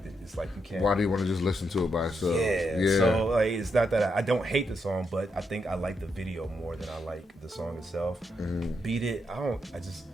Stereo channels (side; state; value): both; normal; correlation 0.81